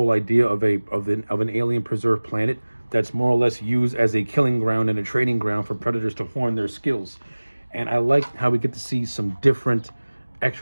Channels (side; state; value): both; inverted; correlation -1.00